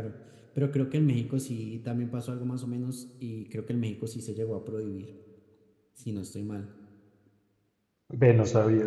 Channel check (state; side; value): identical; both; correlation 1.00